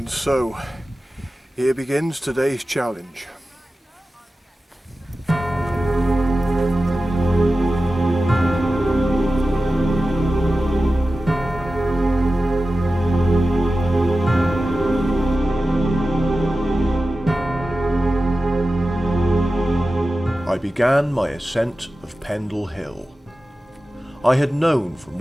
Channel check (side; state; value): both; normal; correlation 0.94